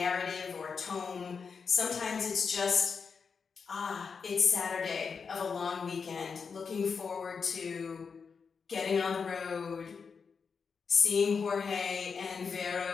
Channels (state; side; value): quieter; right; 5.6 dB